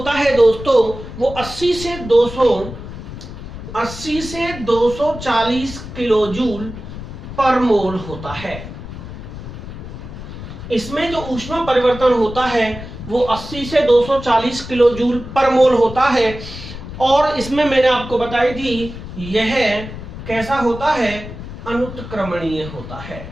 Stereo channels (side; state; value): left; noise; rumble, 11 dB below the sound